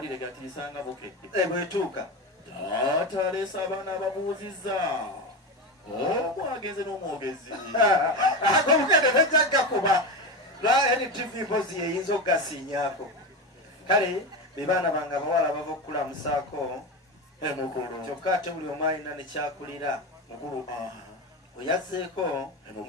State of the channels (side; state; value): both; normal; correlation 0.20